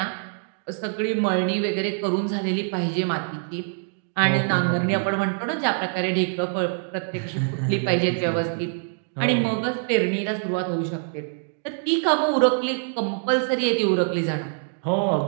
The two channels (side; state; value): left; silent; 62 dB below the other